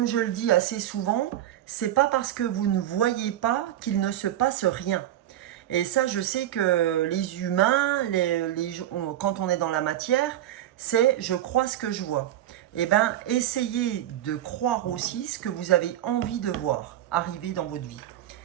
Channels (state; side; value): quieter; left; 12.5 dB